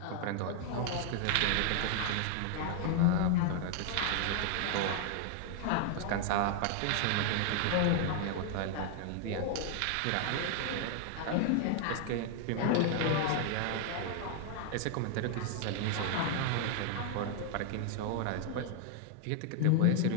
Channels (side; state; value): both; different; correlation 0.00